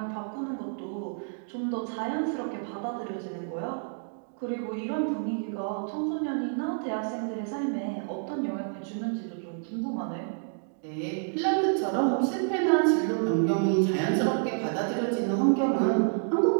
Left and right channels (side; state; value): left; silent; digital silence